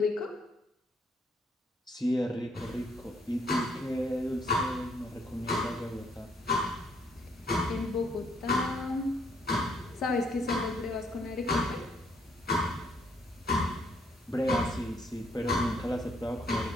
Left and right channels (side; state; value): both; normal; correlation 0.69